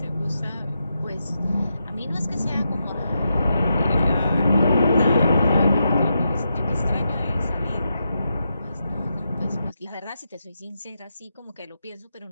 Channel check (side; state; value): both; inverted; correlation -0.85